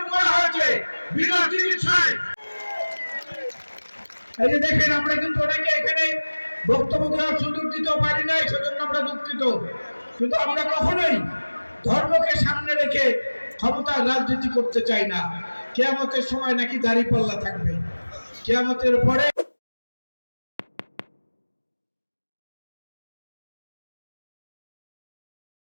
করা হয়েছে বিনা চিকিৎসায়। এই যে দেখেন, আমরা কিন্তু অনেকে এখানে বক্তব্য দেওয়ার সুযোগ দিতেও পারি নাই, সেজন্য আমরা দুঃখিত। কিন্তু আমরা কখনোই ধর্মকে সামনে রেখে ক্ষমতার রাজনীতি করতে চাই না। কিয়ামতের সময় নাকি দাঁড়িপাল্লা থাকবে, কিয়ামতের পরে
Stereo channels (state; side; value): inverted; both; correlation -1.00